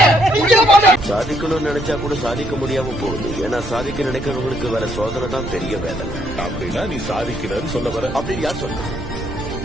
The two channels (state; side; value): noise; right; rumble, 11 dB below the sound